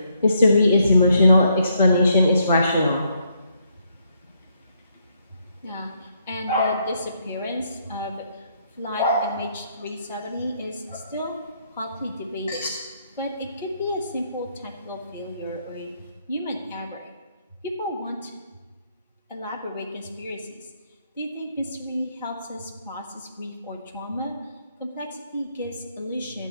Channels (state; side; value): inverted; both; correlation -0.74